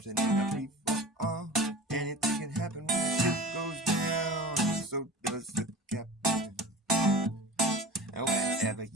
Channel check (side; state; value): both; normal; correlation 0.36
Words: in a free fall. Anything can happen when the ship goes down. So does the captain. And wherever